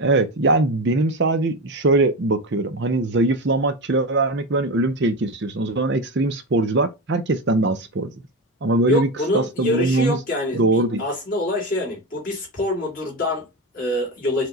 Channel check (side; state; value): both; normal; correlation 0.19